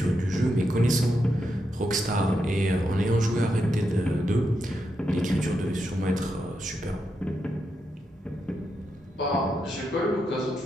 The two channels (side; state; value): both; normal; correlation 0.84